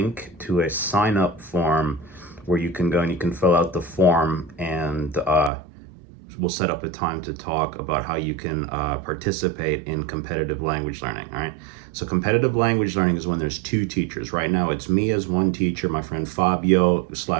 to a sign up form where you can go and you can fill out the form, and we'll set up a time to talk about how you can participate in competitive language learning. All right. So, competitive language learning is when there's two teachers. Right now, it's me as one teacher, my friend Fabio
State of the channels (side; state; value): left; drops out; at 5.5 s